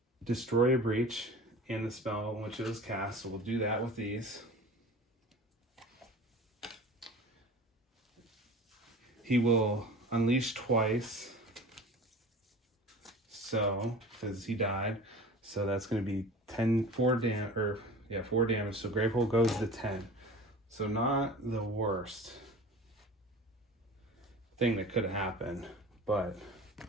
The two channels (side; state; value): both; normal; correlation 0.39